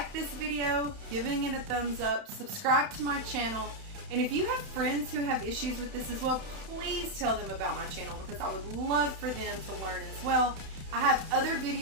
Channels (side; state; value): left; late; 31 ms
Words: this video, giving it a thumbs up, subscribe to my channel, and if you have friends who have issues with this as well, please tell them about my channel because I would love for them to learn as well. I have other